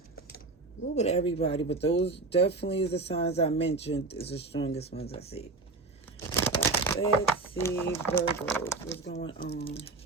A little bit of everybody, but those definitely is the signs I mentioned is the strongest ones I see. Let's see, Virgos, what's going on?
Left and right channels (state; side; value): quieter; left; 3.7 dB